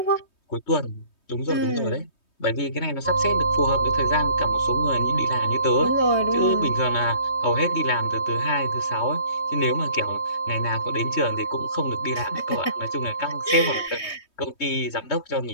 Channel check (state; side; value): late; right; 3.2 ms